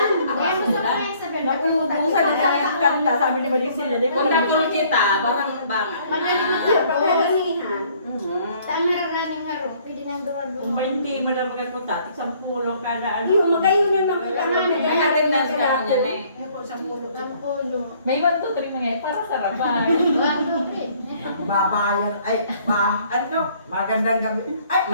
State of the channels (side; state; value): both; inverted; correlation -0.60